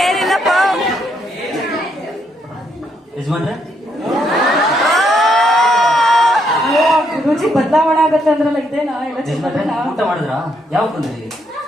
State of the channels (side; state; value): both; normal; correlation 0.75